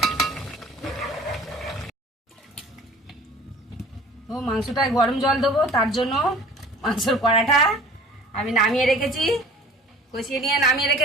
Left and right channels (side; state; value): both; normal; correlation 0.47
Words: তো মাংসটায় গরম জল দেবো, তার জন্য মাংসর কড়াটা আমি নামিয়ে রেখেছি, কষিয়ে নিয়ে নামিয়ে